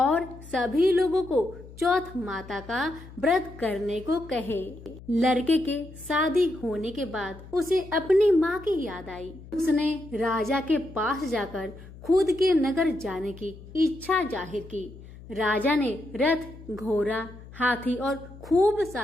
सभी लोगों को चौथ माता का व्रत करने को कहे। लड़के के शादी होने के बाद उसे अपनी माँ की याद आई। उसने राजा के पास जाकर खुद के नगर जाने की इच्छा जाहिर की। राजा ने रथ, घोड़ा, हाथी और खूब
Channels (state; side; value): noise; left; hum, 17 dB below the sound